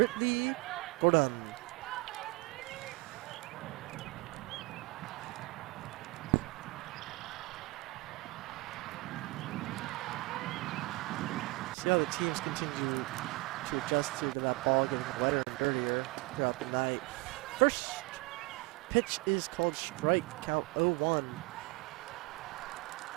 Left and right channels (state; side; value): quieter; left; 23.9 dB